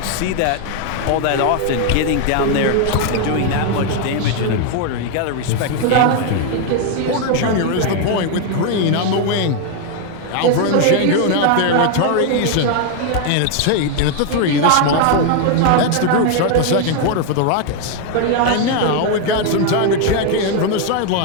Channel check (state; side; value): different; both; correlation 0.00